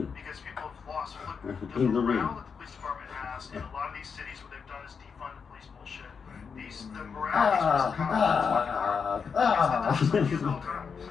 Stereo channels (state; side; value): quieter; right; 6.0 dB